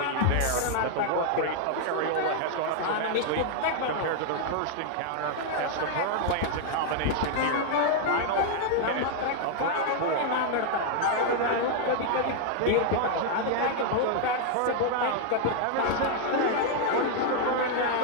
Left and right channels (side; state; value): both; different; correlation 0.00